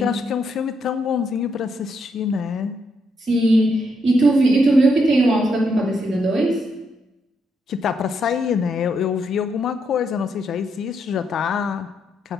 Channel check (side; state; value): both; normal; correlation 0.78